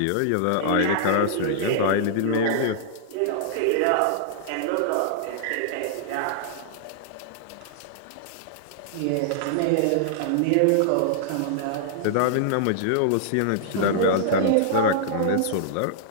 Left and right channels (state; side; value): different; both; correlation -0.01